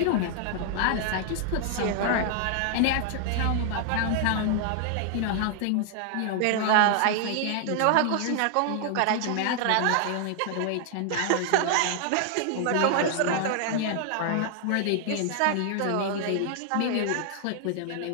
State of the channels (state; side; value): different; both; correlation 0.00